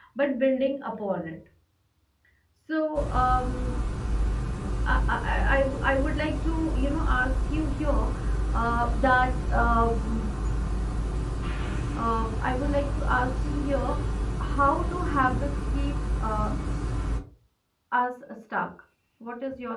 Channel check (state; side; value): identical; both; correlation 1.00